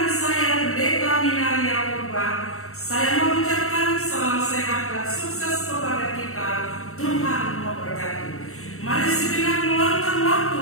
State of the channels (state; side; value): late; right; 0.63 ms